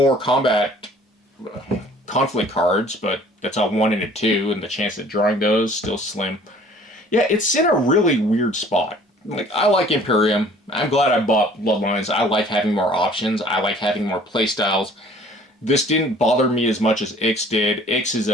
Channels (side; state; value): both; normal; correlation 0.53